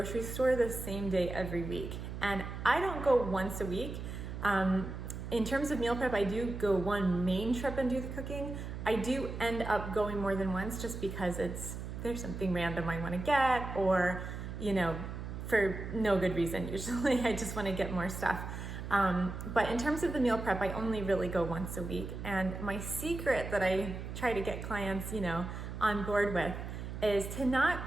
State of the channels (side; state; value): right; noise; hum, 7 dB below the sound